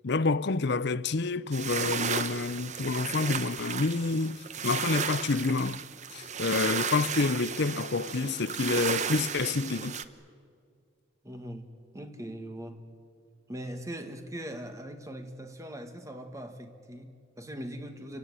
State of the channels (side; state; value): both; normal; correlation 0.27